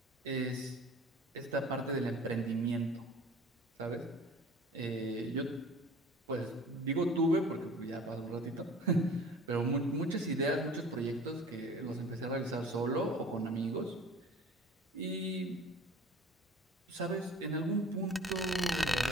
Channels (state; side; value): normal; both; correlation 0.45